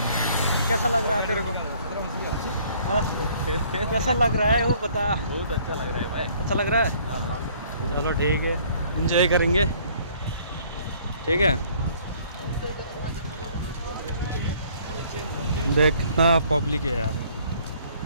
कैसा लग रहा है तेरे को? हाँ? कैसा लग रहा है वो बता। बहुत अच्छा लग रहा है भाई। अच्छा लग रहा है? चलो ठीक है, एंजॉय करेंगे। ठीक है, देख कितना पब्लिक है यार,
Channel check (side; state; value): both; inverted; correlation -0.59